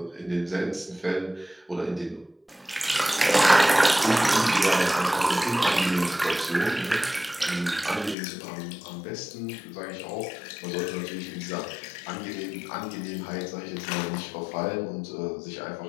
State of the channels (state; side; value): drops out; right; at 8.2 s